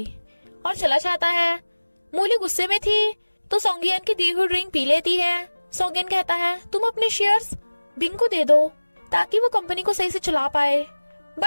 और चला जाता है। मूली गुस्से में थी तो सोंगियन की दी हुई ड्रिंक पी लेती है। सोंगियन कहता है, तुम अपने शेयर्स बिंग को दे दो ताकि वो कंपनी को सही से चला पाए।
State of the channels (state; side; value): inverted; both; correlation -1.00